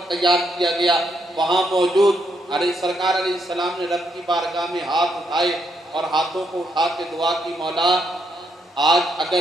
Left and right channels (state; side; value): normal; both; correlation 0.77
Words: تیار کیا گیا وہاں موجود سرکار علیہ السلام نے رب کی بارگاہ میں ہاتھ اٹھائے اور ہاتھوں کو اٹھا کے دعا کی، مولا آج